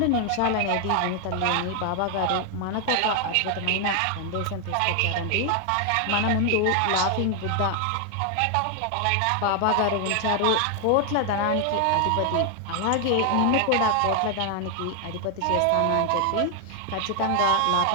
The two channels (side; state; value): both; different; correlation 0.00